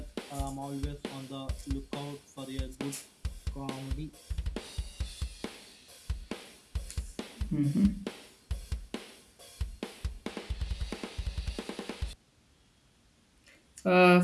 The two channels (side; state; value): both; identical; correlation 1.00